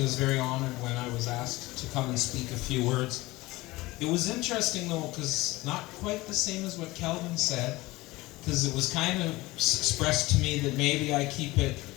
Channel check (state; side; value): quieter; right; 20.1 dB